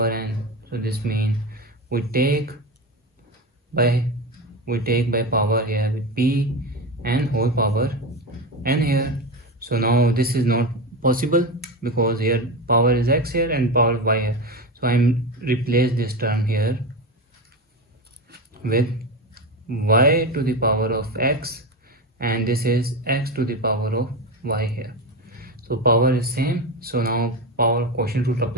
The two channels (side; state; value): both; normal; correlation 0.20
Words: n. So this means we take by power here with p and whole power n here. So now this is not possible because here power is x here and power y here. So I'm replace this term here with y to the power of x, and this is x to the power of y here. So power is same. So now power quotient rule